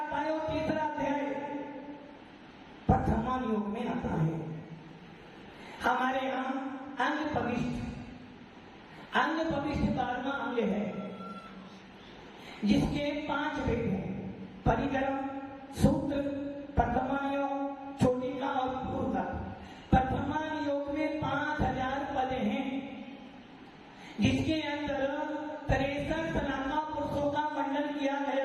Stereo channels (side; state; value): both; identical; correlation 1.00